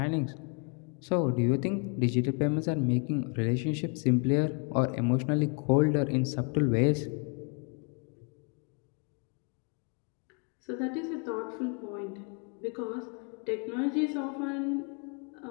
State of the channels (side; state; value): right; quieter; 37.7 dB